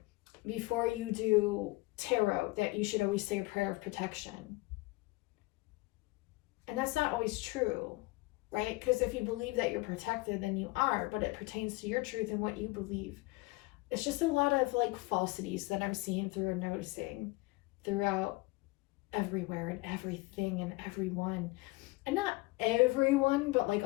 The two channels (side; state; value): right; quieter; 22.1 dB